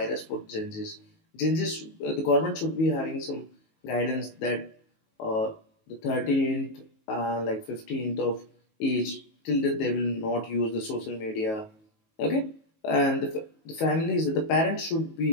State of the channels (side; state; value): right; late; 19 ms